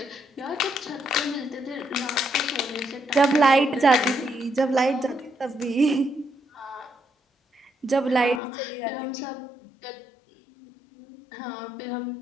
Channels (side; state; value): right; drops out; at 8.4 s